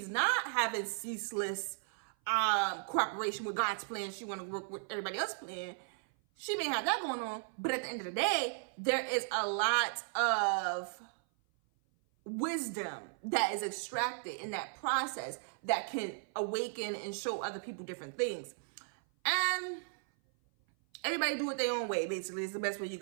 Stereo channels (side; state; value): left; silent; 54 dB below the other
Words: not having ceaseless cooperation with God's plan. She want to work with everybody else's plan. She may have that going on, but at the end of the day, there is a lot of wisdom that is extracted in that process that can awaken and show other people different things. And everybody do it their own way, basically, is the best way you